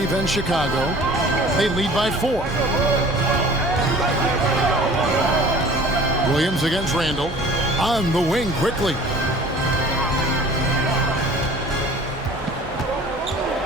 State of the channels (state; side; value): normal; both; correlation 0.47